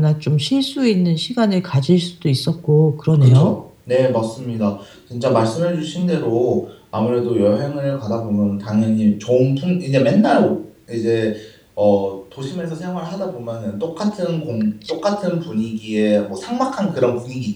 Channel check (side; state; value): both; identical; correlation 1.00